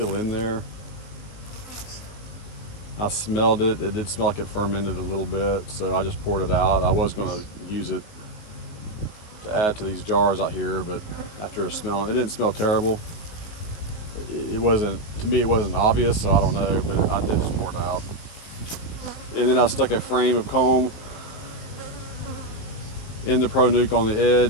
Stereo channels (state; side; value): late; right; 19 ms